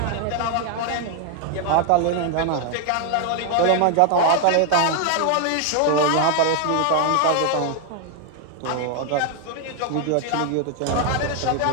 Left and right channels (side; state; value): both; different; correlation 0.00